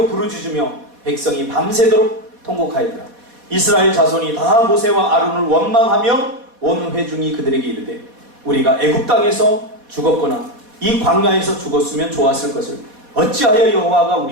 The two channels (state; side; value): late; left; 4.2 ms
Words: 부르짖으며 백성이 밤새도록 통곡하였더라. 이스라엘 자손이 다 모세와 아론을 원망하며 온 회중이 그들에게 이르되 우리가 애굽 땅에서 죽었거나 이 광야에서 죽었으면 좋았을 것을 어찌하여 여호와가